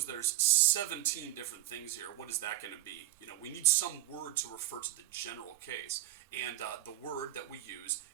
there's 17 different things here. What is that going to be? We need some word to refer to the general case, and the word that we use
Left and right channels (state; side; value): quieter; left; 15.0 dB